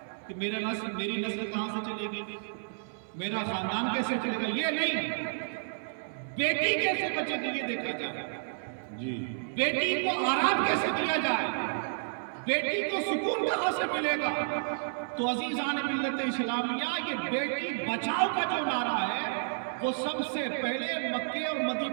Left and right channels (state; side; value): silent; left; 57 dB below the other